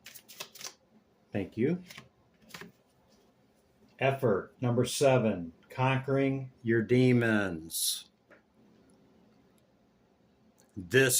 Thank you. Effort, number 7, conquering your demons.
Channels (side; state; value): both; identical; correlation 1.00